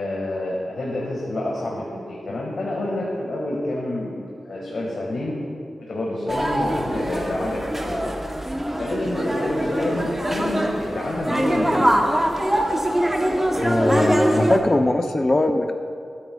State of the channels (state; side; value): normal; both; correlation 0.95